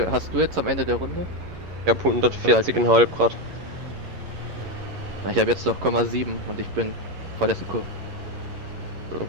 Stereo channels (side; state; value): left; late; 11 ms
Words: hast du jetzt am Ende der Runde? Ich hab 140,5 Grad. Na, ich habe jetzt noch 0,7 und ich bin vorletzte Kurve.